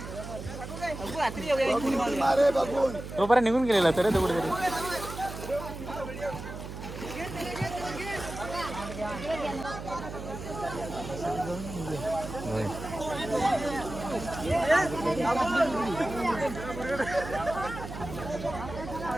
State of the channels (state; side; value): noise; right; hum, 9 dB below the sound